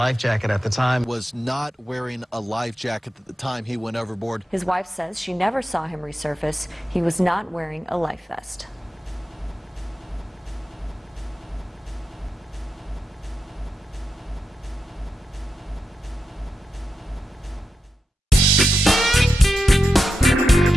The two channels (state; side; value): normal; both; correlation 0.89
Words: jacket at the time. Was not wearing a life jacket at the time he went overboard. His wife says she never saw him resurface. He was not wearing a life vest.